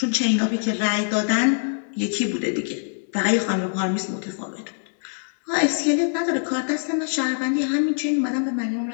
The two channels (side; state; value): right; silent; digital silence